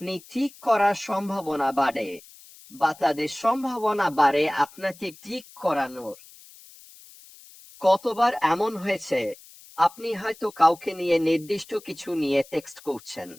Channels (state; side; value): noise; left; hiss, 22 dB below the sound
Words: ক্লিক করার সম্ভাবনা বাড়ে, বা তাদের সম্ভাবনা বাড়ে আপনাকে ক্লিক করানোর। কতবার এমন হয়েছে, আপনি হয়তো কাউকে নিয়ে নির্দিষ্ট কিছু নিয়ে টেক্সট করছেন।